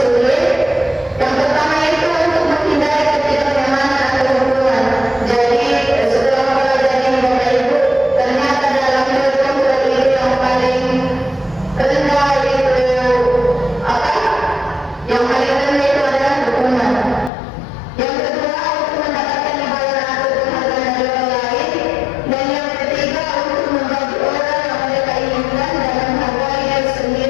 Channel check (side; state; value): right; drops out; at 17.3 s